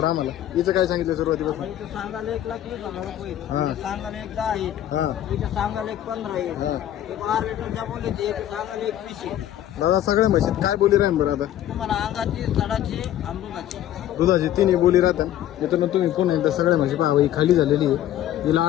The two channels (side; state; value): right; quieter; 12.1 dB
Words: आम्हाला. हिचं काय सांगितलं सुरुवातीपासून? इथं सांगायला 1,20,000 रुपये, हा. इथं सांगायला 10 आहे, हा इथं सांगायला 15 आहे, हा. एक 12 लिटरच्या बोलायची, एक सांगायला 21 आहे. दादा सगळ्या म्हशीत काय बोली राहील बरं आता? तुम्हाला अंगाची, सडाची, अमृताची. दुधाची तिन्ही बोली राहतात. मित्रांनो तुम्ही कोण एकदा सगळ्या म्हशी पहा. ही खाली झालेली आहे. हिला